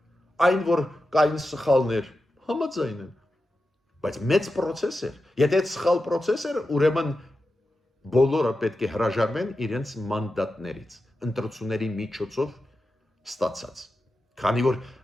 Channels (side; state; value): both; normal; correlation 0.91